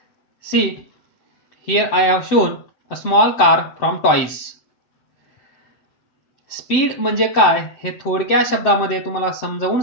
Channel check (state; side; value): late; right; 7.8 ms